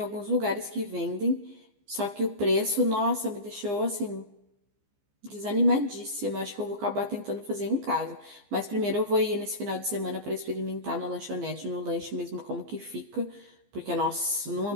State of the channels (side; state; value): left; late; 15 ms